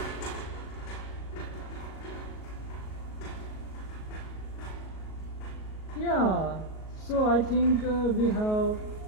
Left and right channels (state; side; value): late; right; 38 ms